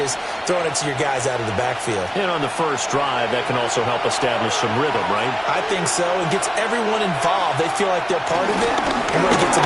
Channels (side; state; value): both; identical; correlation 1.00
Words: throwing it to your guys out of the backfield. And on the first drive, that can also help establish some rhythm, right? I think so. It gets everyone involved. They feel like they're part of it, and really gets them